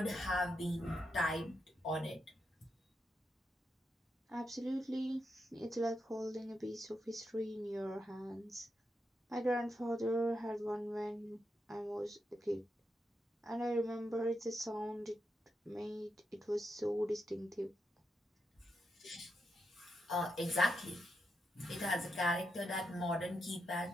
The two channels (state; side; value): normal; both; correlation 0.84